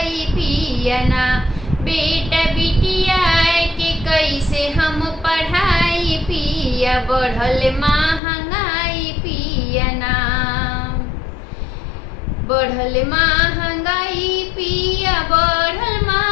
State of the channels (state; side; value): drops out; right; at 8.2 s